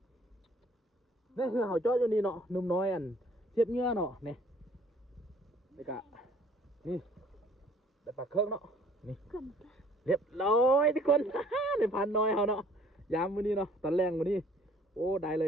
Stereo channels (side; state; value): both; normal; correlation 0.57